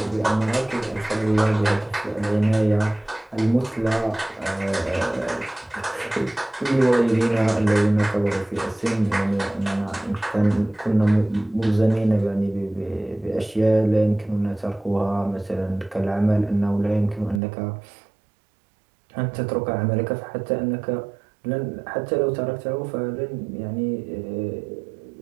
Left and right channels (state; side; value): drops out; left; at 17.4 s